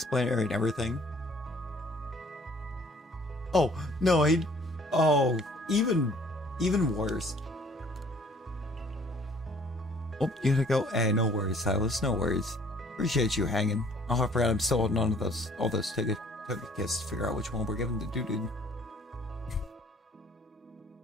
area and everything. Oh no, even worse. Oh, you gotta go. Hey, no worries, Silas. No worries. Appreciate you hanging. Oh, I forgot I'm still holding on to all those ticket kits to figure out which one we're giving to dude.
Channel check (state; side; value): normal; both; correlation 0.57